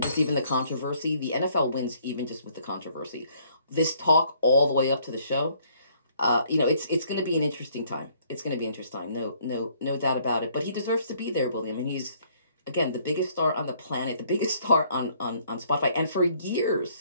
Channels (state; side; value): inverted; both; correlation -0.64